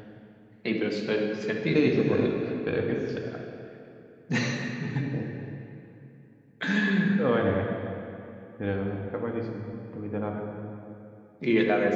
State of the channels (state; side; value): identical; both; correlation 1.00